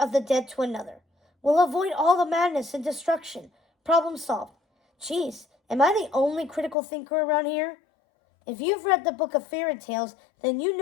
the dead to another. We'll avoid all the madness and destruction. Problem solved. Geez, am I the only critical thinker around here? If you've read the Book of Fairy Tales, then you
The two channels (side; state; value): right; drops out; at 6.8 s